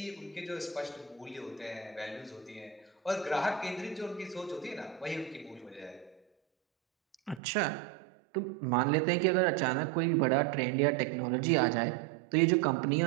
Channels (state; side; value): drops out; left; at 7.4 s